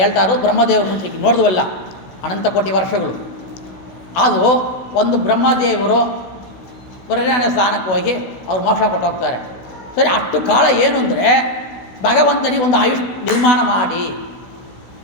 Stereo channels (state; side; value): late; right; 16 ms